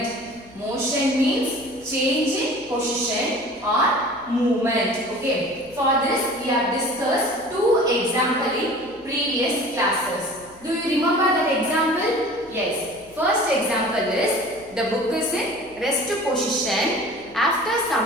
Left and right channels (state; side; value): noise; left; hum, 27 dB below the sound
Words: Motion means change in position or movement. Okay. For this, we have discussed two examples in previous classes. Do you remember that example? Yes. First example is the book is in rest position. After